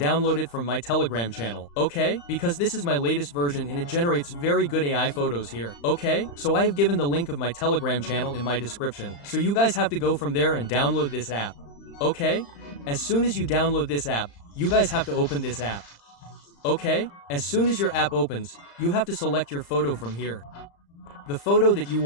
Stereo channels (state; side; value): late; right; 35 ms